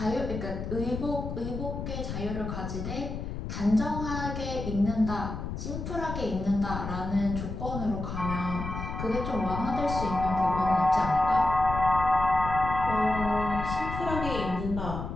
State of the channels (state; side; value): noise; left; rumble, 6 dB below the sound